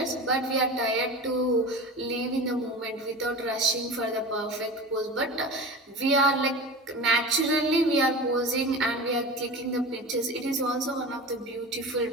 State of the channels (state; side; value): normal; both; correlation 0.32